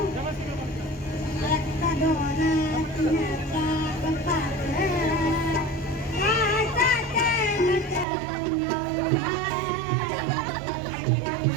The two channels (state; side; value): drops out; left; at 8.1 s